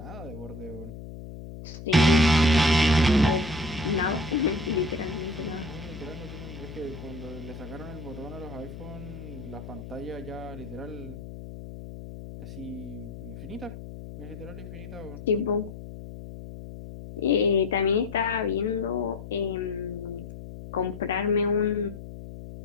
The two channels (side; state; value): left; noise; hum, 12 dB below the sound